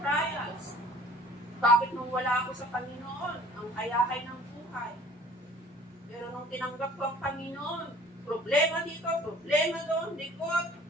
Bakit nung wala ako sa Panginoon, ang kayakay ng buhay? Pero nung tinanggap ko ang Panginoon, problema dito, problema doon, likod,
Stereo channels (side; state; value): both; normal; correlation 0.51